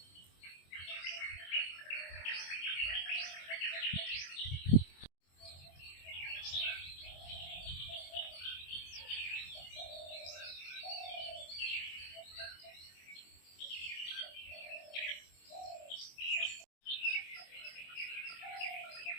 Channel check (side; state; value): right; late; 23 ms